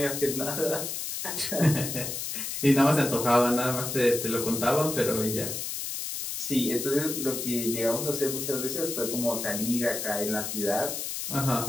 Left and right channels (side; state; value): left; noise; hiss, 4 dB below the sound